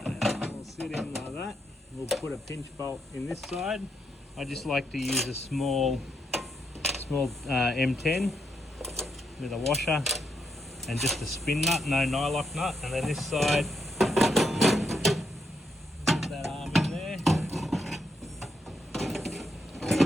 we'll sit in like that. We'll put a pinch bolt in this side. I just like to use a small M10 with a washer and just a spin nut, no nylock nut, and then this side, put that arm in there.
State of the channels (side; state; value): both; normal; correlation 0.79